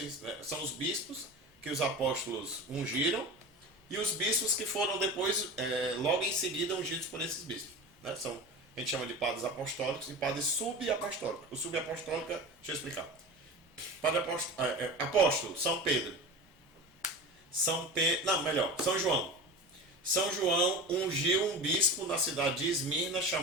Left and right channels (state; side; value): normal; both; correlation 0.31